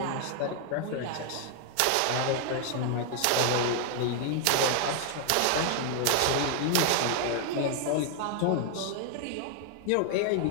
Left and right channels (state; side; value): different; both; correlation 0.00